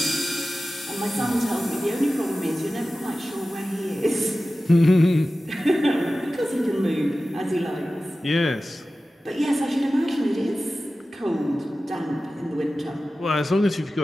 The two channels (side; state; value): both; normal; correlation 0.95